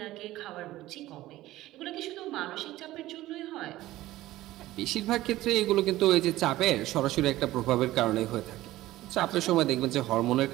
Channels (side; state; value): left; quieter; 16.1 dB